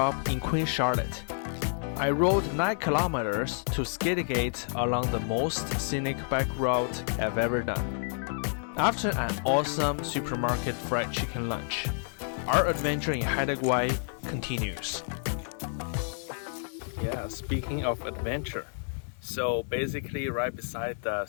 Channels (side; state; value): right; silent; 58 dB below the other